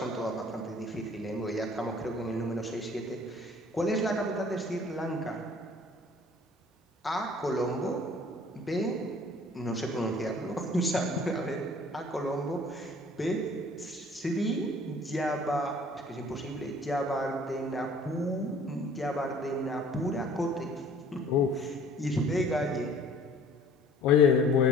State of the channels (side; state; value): both; normal; correlation 0.52